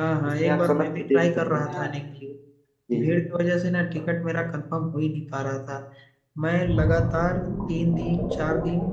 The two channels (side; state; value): both; identical; correlation 1.00